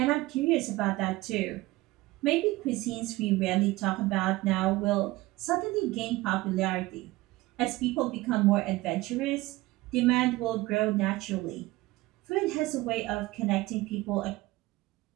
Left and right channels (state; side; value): quieter; left; 19.4 dB